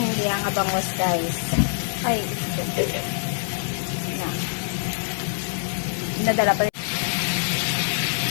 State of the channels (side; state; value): right; silent; 62 dB below the other